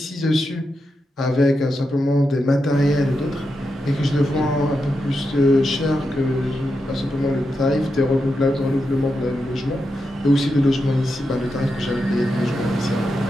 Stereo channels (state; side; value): normal; both; correlation 0.87